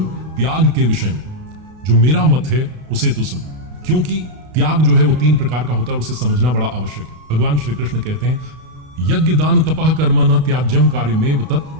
त्याग के विषय में जो मेरा मत है उसे तू सुन, क्योंकि त्याग जो है वो 3 प्रकार का होता है और उसे समझना बड़ा आवश्यक है। भगवान श्री कृष्ण कहते हैं यज्ञ दान तपः कर्म न त्याज्यम कार्यमेव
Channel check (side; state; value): left; late; 32 ms